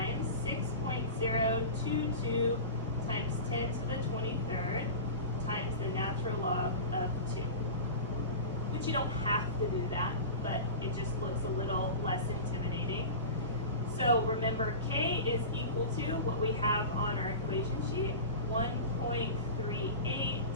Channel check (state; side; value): inverted; both; correlation -0.30